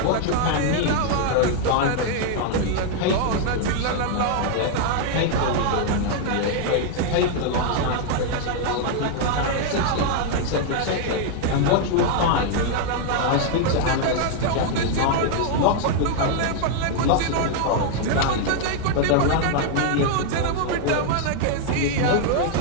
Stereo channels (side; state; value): both; different; correlation 0.00